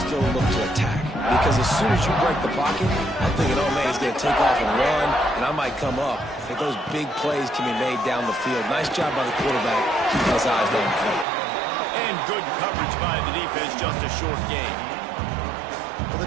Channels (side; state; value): left; drops out; at 11.2 s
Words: look to attack. Because as soon as you break the pocket, I'm thinking, oh, man, he's going to take off and run, and I might come up. But those big plays can be made down the field. Nice job by the quarterback, keeping his eyes down the field. And good coverage by the defense, just a short game. Well,